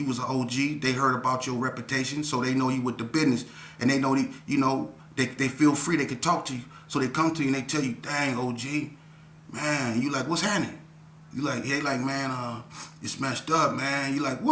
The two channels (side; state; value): both; identical; correlation 1.00